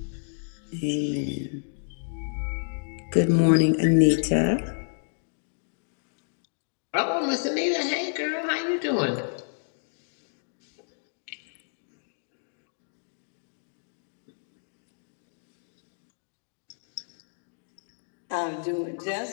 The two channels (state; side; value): silent; right; digital silence